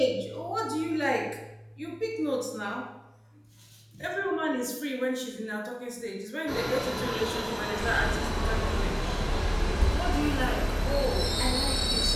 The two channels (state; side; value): identical; both; correlation 1.00